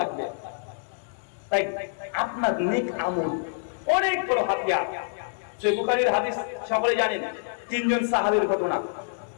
তাই আপনার নেক আমল অনেক বড় হাতিয়ার। সহিহ বুখারীর হাদিস সকলে জানেন, 3 জন সাহাবীর ঘটনা।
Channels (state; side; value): silent; right; 57 dB below the other